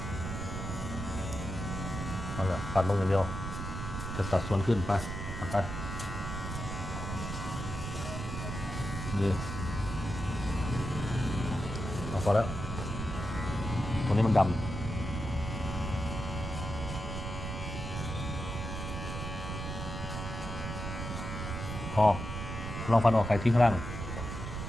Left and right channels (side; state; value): right; noise; rumble, 5 dB below the sound